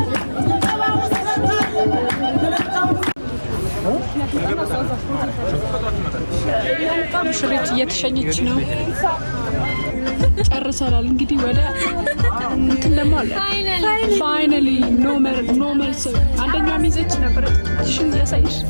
ሙሽሪት እየተሸኘች ነው። ጨርሰናል። እንግዲህ ወደ እንትን ደግሞ አለ ፋይናሊ ኖርማል ሰው አንደኛው ሚዜች ነበር። ሽን ያሳይሽ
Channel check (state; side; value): inverted; both; correlation -1.00